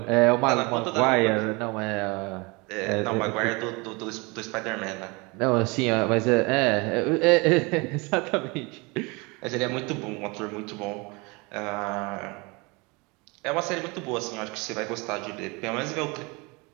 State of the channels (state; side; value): quieter; left; 27.2 dB